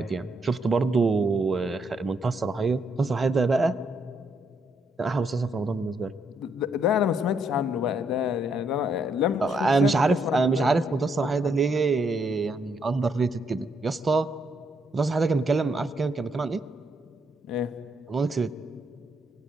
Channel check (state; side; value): normal; both; correlation 0.75